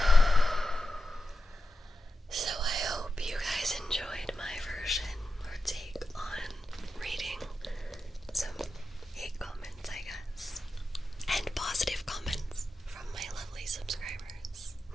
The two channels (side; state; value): both; normal; correlation 0.91